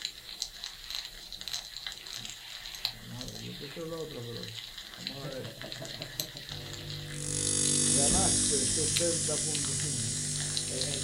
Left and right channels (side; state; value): both; identical; correlation 1.00